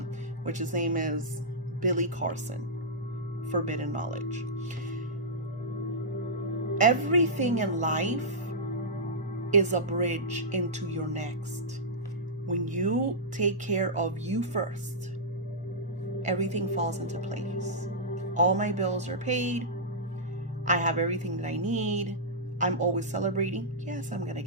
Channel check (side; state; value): both; normal; correlation -0.11